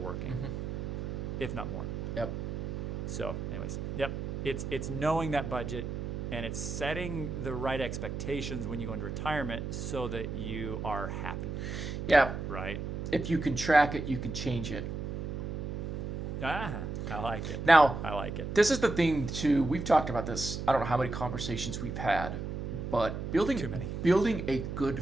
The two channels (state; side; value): noise; right; hum, 4 dB below the sound